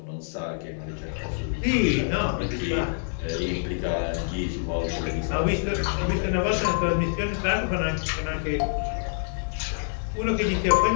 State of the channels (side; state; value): right; silent; 61 dB below the other